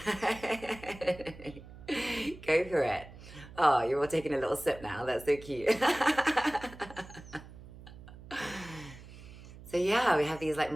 for it. Oh, you're all taking a little sip now. That's so cute. So yeah, we have these like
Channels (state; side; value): noise; right; hum, 17 dB below the sound